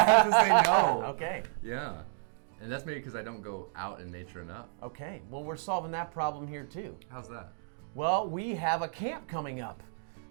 to say no. Okay. Yeah. And that's maybe because I don't go out in nature enough. Okay. Well, we're solving that problem here too. How's that? Well, we have a camp coming up.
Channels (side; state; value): left; silent; digital silence